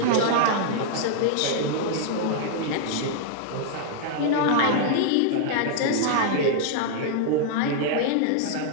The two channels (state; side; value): different; both; correlation -0.01